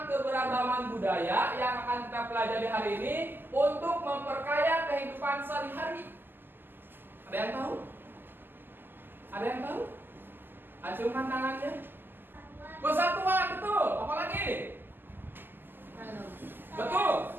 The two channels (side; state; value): left; late; 0.094 ms